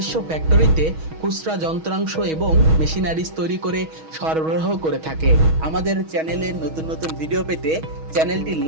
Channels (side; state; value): left; late; 6.3 ms